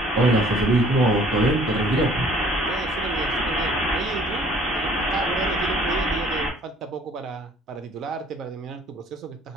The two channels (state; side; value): normal; both; correlation 0.55